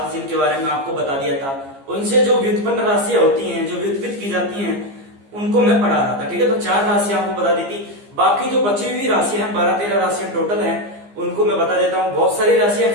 जिनके बारे में आपको बता दिया था। उनसे जो व्युत्पन्न राशियां होती हैं, जो व्युत्पन्न की जाती हैं, उनको मैं पढ़ा रहा था, ठीक है। तो 4 राशियां आपको बता दी थी। बाकी जो बची हुई राशियां हैं, 12-13 राशियां टोटल हैं, उनको मैं बता देता हूँ। बहुत सारी राशियां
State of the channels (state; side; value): late; left; 15 ms